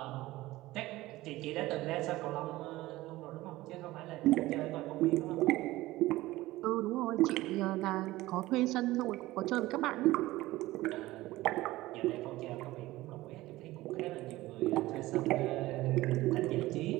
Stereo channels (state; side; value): quieter; left; 17.8 dB